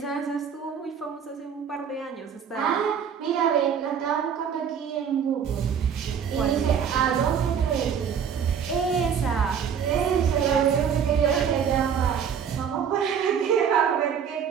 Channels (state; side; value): quieter; left; 7.6 dB